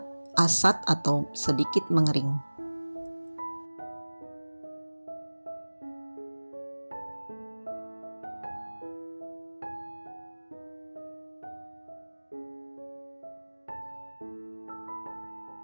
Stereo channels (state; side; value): inverted; both; correlation -1.00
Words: asat atau sedikit mengering.